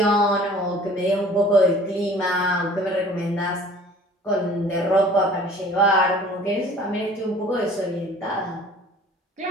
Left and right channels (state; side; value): normal; both; correlation 0.49